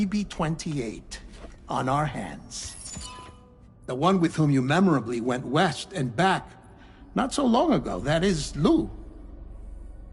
on our hands. The one with whom you memorably went west and back not so long ago, that is Lou.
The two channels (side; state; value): both; identical; correlation 1.00